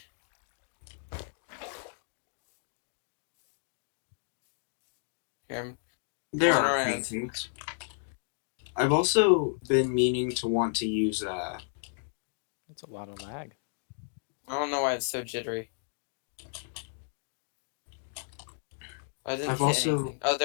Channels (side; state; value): right; silent; digital silence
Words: Here, There Going are around. things. I've also been meaning to want to use That's a lot of lag. I don't know why it's so jittery. I didn't I've hit also- anything. Oh,